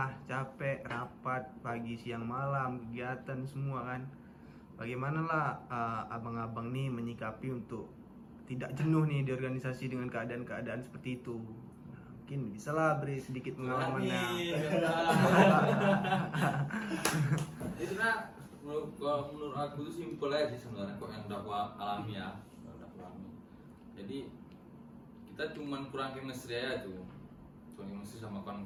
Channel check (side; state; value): both; identical; correlation 1.00